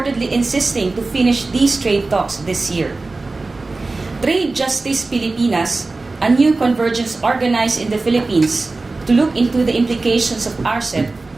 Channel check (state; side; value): quieter; left; 3.5 dB